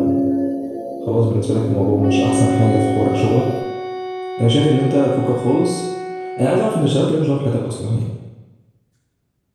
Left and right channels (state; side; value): identical; both; correlation 1.00